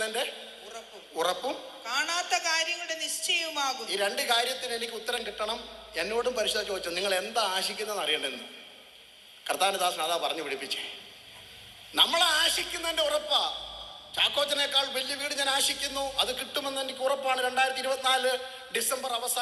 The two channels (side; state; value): both; identical; correlation 1.00